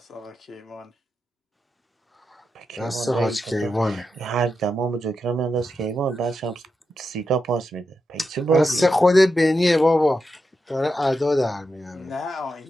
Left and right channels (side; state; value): both; normal; correlation 0.87